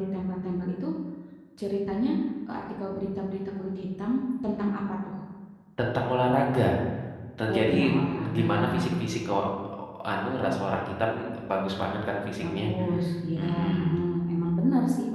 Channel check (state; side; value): identical; both; correlation 1.00